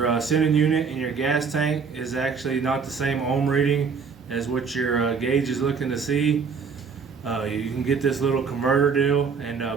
sending unit in your gas tank is actually not the same ohm reading as what your gauge is looking to see, you can get this little converter deal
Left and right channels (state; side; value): quieter; left; 5.6 dB